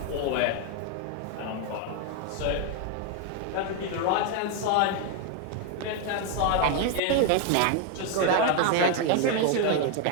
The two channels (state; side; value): different; both; correlation 0.01